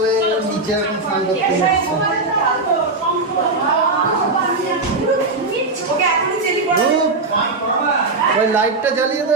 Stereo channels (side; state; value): left; quieter; 3.4 dB